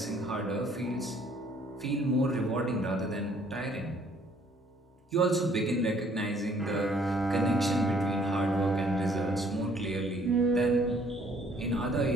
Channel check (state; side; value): normal; both; correlation 0.61